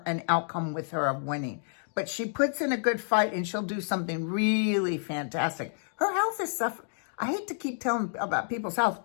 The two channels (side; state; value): right; silent; digital silence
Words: an outcome with her of winning. But she puts in a good fight, and she'll do something really fantastic. Her health is suffering. I hate to keep telling about people's health,